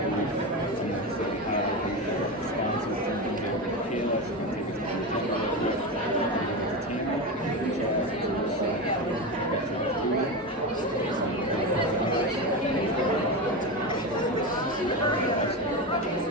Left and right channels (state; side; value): normal; both; correlation 0.18